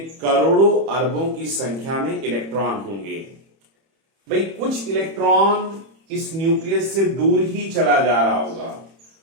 करोड़ों अरबों की संख्या में इलेक्ट्रॉन होंगे. भाई कुछ इलेक्ट्रॉन इस न्यूक्लियस से दूर ही चला जा रहा होगा,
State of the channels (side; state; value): left; late; 31 ms